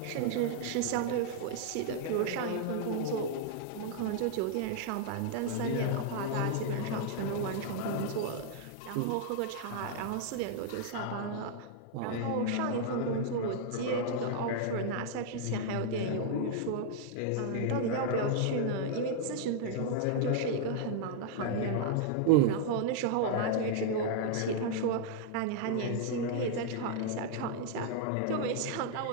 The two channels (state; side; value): different; both; correlation -0.01